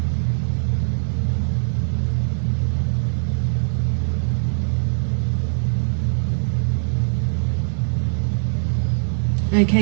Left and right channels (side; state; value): left; silent; 65 dB below the other